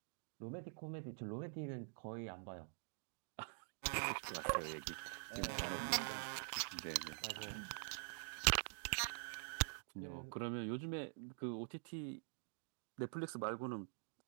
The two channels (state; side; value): silent; left; digital silence